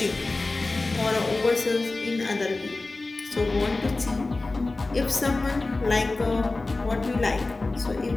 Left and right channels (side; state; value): right; quieter; 3.3 dB